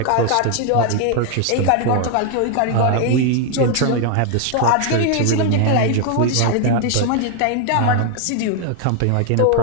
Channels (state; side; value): different; both; correlation 0.00